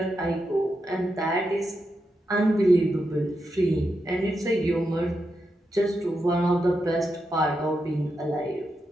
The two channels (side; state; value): both; normal; correlation 0.86